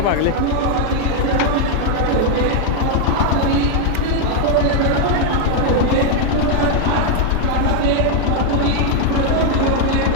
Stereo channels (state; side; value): different; both; correlation 0.01